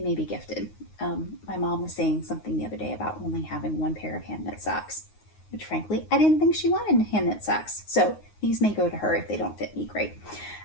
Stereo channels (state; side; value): late; right; 9.5 ms